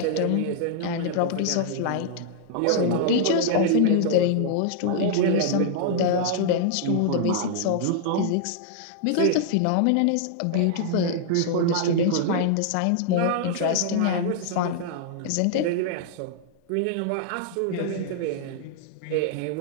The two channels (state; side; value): different; both; correlation -0.01